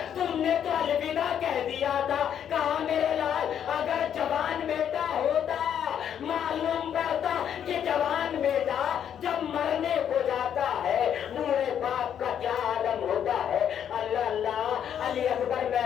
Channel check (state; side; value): quieter; right; 9.1 dB